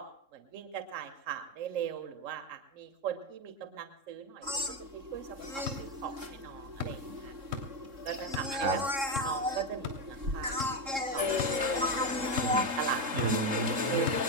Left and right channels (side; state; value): left; late; 3.7 ms